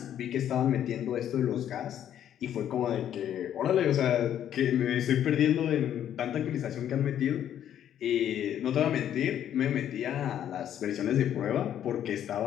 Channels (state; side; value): quieter; right; 10.4 dB